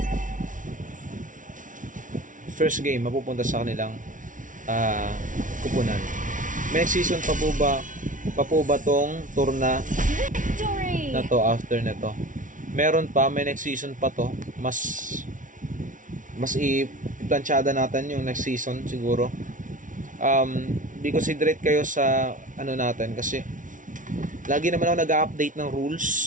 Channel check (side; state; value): left; late; 0.38 ms